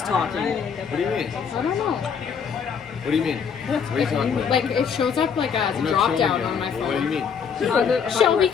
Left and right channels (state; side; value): quieter; right; 6.7 dB